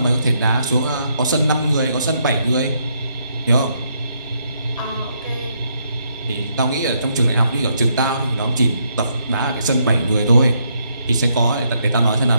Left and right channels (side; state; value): both; inverted; correlation -0.75